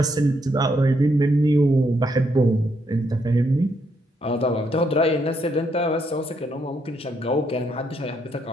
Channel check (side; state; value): both; normal; correlation 0.76